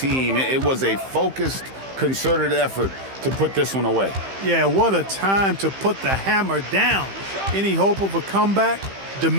It was a focused, concerted effort to put this one away. Yeah, what a time to put the hammer down. Any hope of a comeback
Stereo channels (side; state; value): left; late; 15 ms